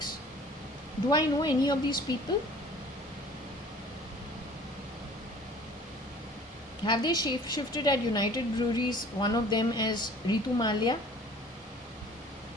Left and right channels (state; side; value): normal; both; correlation 0.49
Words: Do I know any of these people? Have they shifted at United Breweries, one of them as Ritu Malia?